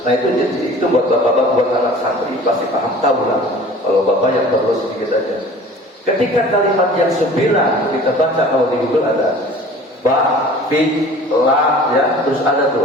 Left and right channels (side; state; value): both; normal; correlation 0.45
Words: Nah itu buat bapak-bapak, buat anak santri pasti paham, tahu lah. Kalau bapak yang baru sedikit aja. Ketika kalimat yang 9 kita baca, kalau di Google ada ba, fi, la, ya, terus ada